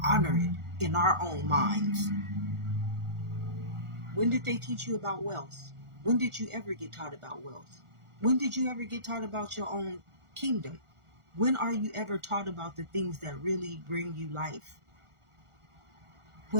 honor it in our own minds. When did they teach you about wealth? When did you ever get taught about wealth? When did you ever get taught about your own kingdom? When are you ever taught about the things that really bring you life?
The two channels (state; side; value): late; left; 1.4 ms